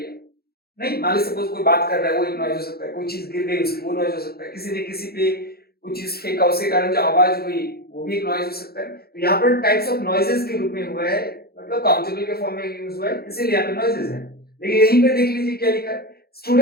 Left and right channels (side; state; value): right; late; 0.45 ms